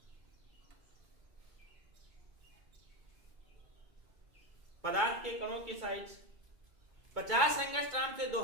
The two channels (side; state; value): left; late; 2.2 ms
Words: पदार्थ के कणों की साइज 50 एंगस्ट्रॉम से